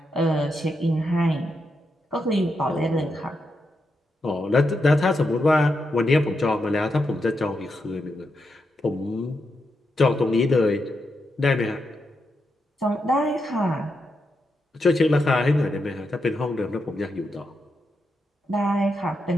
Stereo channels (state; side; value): normal; both; correlation 0.84